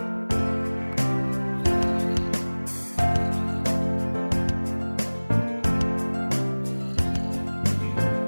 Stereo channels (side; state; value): both; inverted; correlation -1.00